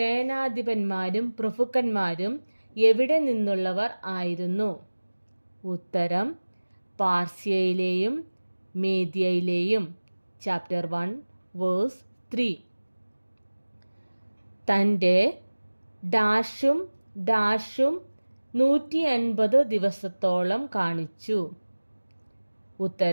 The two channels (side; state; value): both; inverted; correlation -1.00